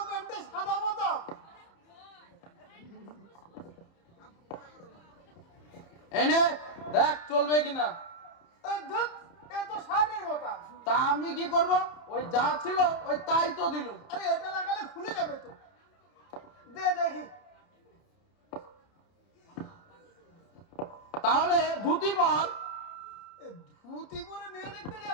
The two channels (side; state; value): right; late; 30 ms